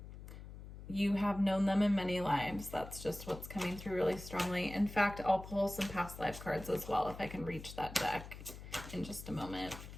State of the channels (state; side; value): noise; left; hum, 13 dB below the sound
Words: you have known them in many lives. That's just what's coming through really strongly. In fact, I'll pull some past life cards as well if I can reach that deck in just a moment.